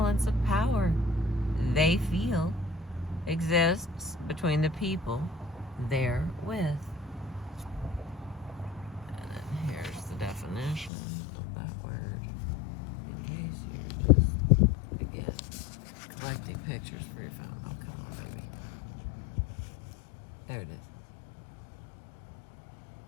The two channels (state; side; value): drops out; right; at 10.9 s